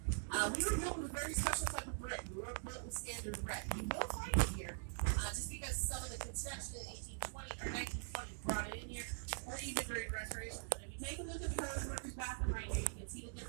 We were built with a very special type of brick. We were built with standard red. You will find it here, just because some of the construction in 1820 or 1920 brought it in here, or even during restoration. But if you take a look at the road worker's bathroom right here, you can see the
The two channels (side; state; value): left; silent; digital silence